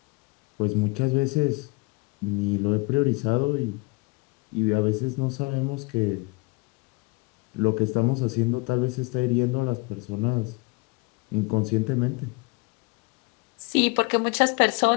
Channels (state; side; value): quieter; right; 27.7 dB